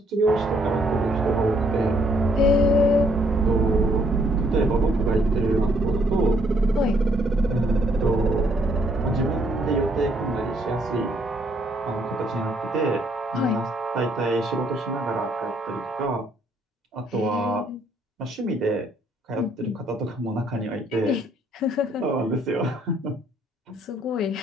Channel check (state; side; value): normal; both; correlation 0.68